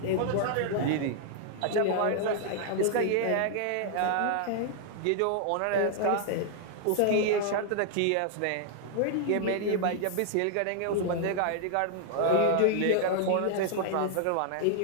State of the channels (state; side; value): different; both; correlation 0.00